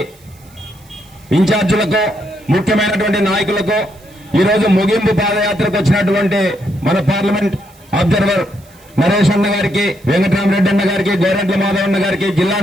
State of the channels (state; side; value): noise; right; hiss, 28 dB below the sound